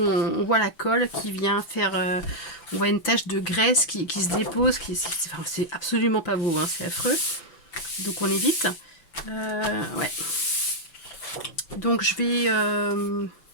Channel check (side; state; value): right; late; 5.9 ms